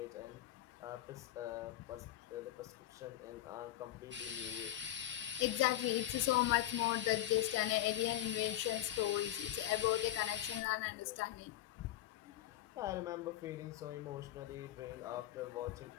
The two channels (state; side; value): quieter; right; 13.6 dB